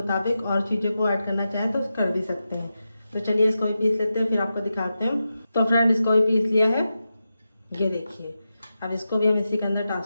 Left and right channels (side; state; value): both; inverted; correlation -0.90